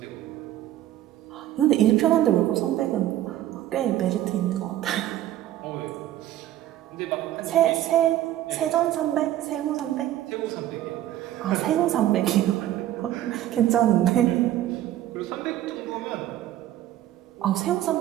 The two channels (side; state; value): left; quieter; 13.2 dB